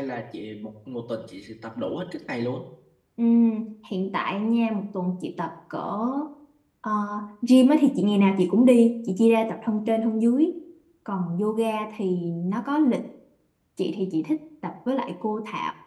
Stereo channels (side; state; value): both; identical; correlation 1.00